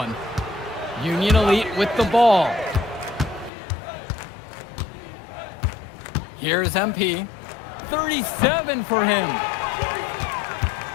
Union Elite with the ball. Here's MP. 37 for him.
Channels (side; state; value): right; drops out; at 3.5 s